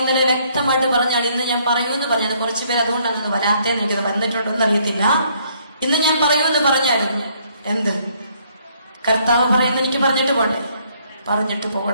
വ്യക്തമായിട്ട് പറഞ്ഞാൽ, ഇന്ന് ഞാൻ പറയുമെന്ന് പറഞ്ഞത് കുറച്ചു പേര് അതുകൊണ്ടാണ് വരാത്തേന്ന് എനിക്ക് വന്നിട്ടുണ്ടോന്ന് അറിയത്തില്ല. ഇന്ന് ഞാൻ പറയുമെന്ന് പറഞ്ഞായിരുന്നു. എന്ത് കർത്താവ് പറയുന്ന എനിക്ക് പറഞ്ഞിട്ട് പോട്ടെ, പറഞ്ഞിട്ട്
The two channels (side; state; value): both; inverted; correlation -0.67